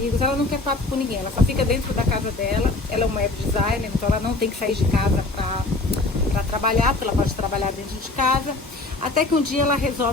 ela não quer papo com ninguém, ela só fica dentro da casa dela, ela é uma web designer, então ela não tem que sair de casa para trabalhar, porque ela pode trabalhar dentro de casa, até que um dia ela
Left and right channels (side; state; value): right; quieter; 3.1 dB